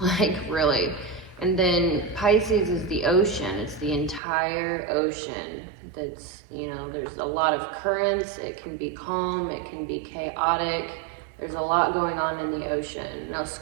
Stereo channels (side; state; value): left; drops out; at 4.2 s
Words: like really. And then Pisces is the ocean, it's the entire ocean. That's, you know, there's a lot of currents, it can be calm, it can be chaotic, there's a lot going on in the ocean. Now